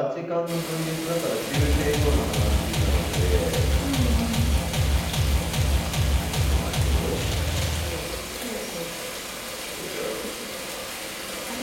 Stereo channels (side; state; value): both; identical; correlation 1.00